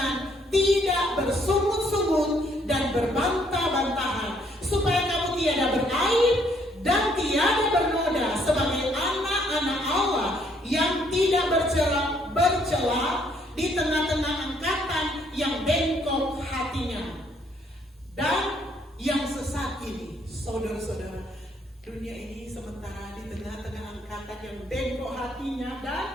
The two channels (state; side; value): normal; both; correlation 0.68